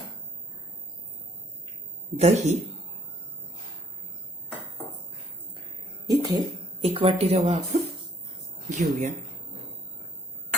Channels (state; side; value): normal; both; correlation 0.65